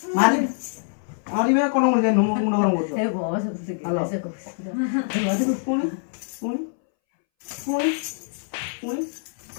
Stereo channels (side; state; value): right; silent; 62 dB below the other